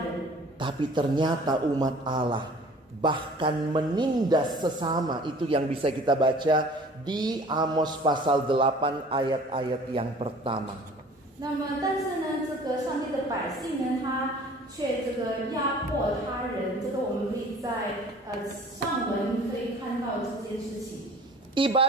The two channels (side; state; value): both; normal; correlation 0.48